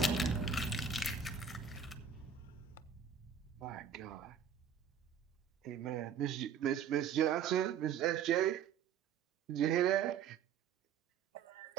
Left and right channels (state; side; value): quieter; left; 7.2 dB